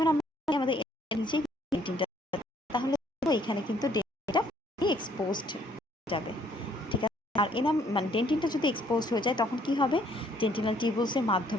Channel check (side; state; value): both; normal; correlation 0.64